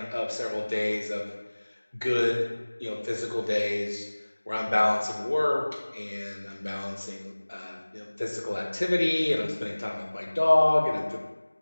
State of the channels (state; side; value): inverted; both; correlation -1.00